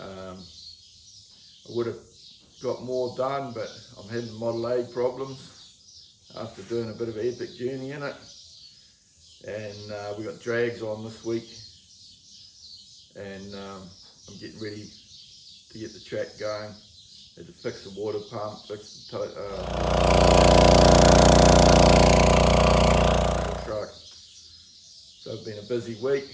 would have got more done, but I'm having Model A problems after doing a bit of an epic journey in it, and we got drags on this week, and I'm getting ready to get the track going. Had to fix the water pump, fix the truck. So it's been a busy week,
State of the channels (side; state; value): both; identical; correlation 1.00